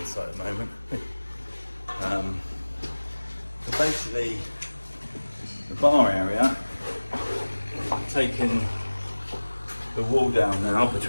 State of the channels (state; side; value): inverted; both; correlation -1.00